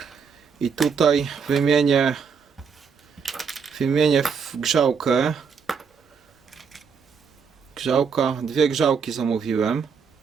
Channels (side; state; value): left; quieter; 6.1 dB